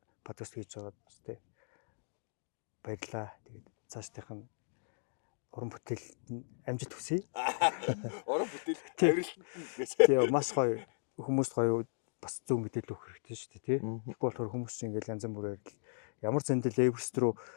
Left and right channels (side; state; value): right; silent; digital silence